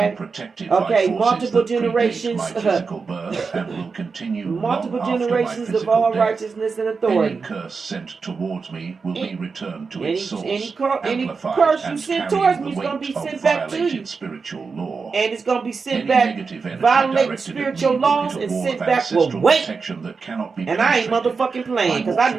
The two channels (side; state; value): left; quieter; 4.9 dB